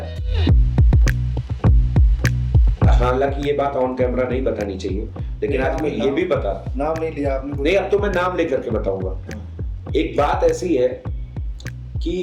हालांकि ये बात ऑन कैमरा नहीं बतानी चाहिए, लेकिन आज मैं ये भी बता, नाम नहीं लिया आपने? नहीं, अब तो मैं नाम लेकर के बताऊंगा। एक बात ऐसी है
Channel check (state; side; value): identical; both; correlation 1.00